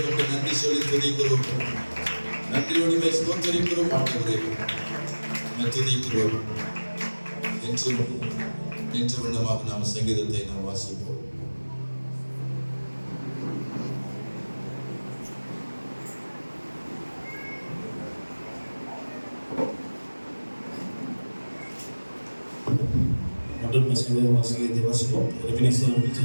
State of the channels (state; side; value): inverted; both; correlation -1.00